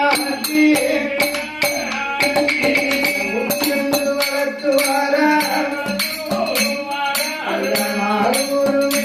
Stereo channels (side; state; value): both; identical; correlation 1.00